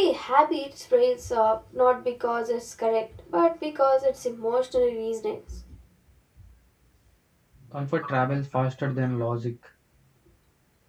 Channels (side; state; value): both; identical; correlation 1.00